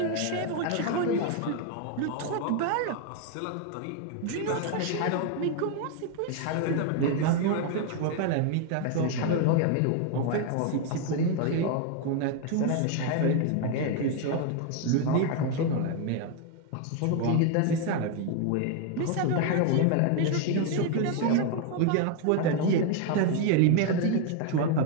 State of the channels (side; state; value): both; different; correlation 0.01